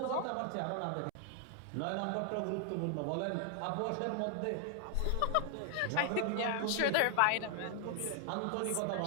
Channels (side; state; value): both; different; correlation 0.00